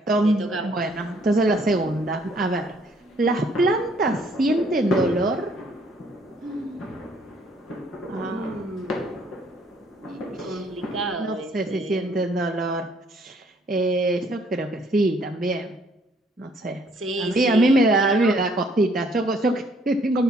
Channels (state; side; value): normal; both; correlation 0.64